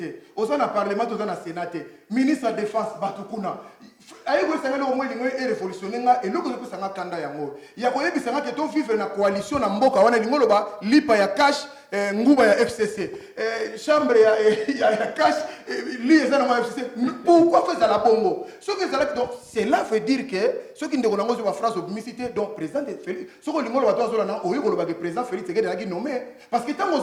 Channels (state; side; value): identical; both; correlation 1.00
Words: oza na parlement oza na sénat te ministre de défense bato kuna aye koyebisa ngai loko mwa elingo erévolutionne nga eloko ezopesa nga kanda yango ya koyebisa nga ke to vivre na coalition na mboka wana elingo loba lipa ya cash nguba ya FCC chambre ya cash li eza na FCC pourquoi faire la bongo ce que ça donc cela veut dire que ce qui ndeko nango ba phrase obmicité donc président Félix ce que lingo loba to azola na oyo loba que président Félix Tshisekedi a nommé parce que tant